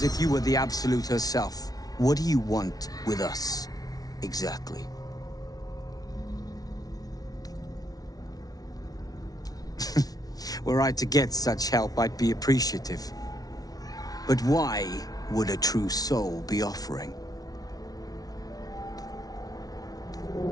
if you were the Absolute herself. What do you want with us, exactly? Were I to get such help, I'd be appreciative. But why would a true soul be offering?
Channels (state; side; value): late; right; 0.18 ms